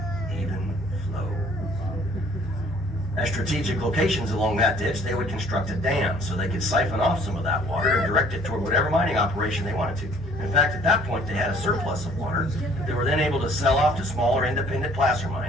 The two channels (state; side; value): normal; both; correlation 0.57